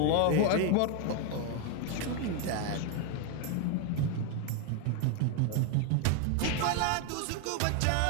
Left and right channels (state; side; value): different; both; correlation 0.01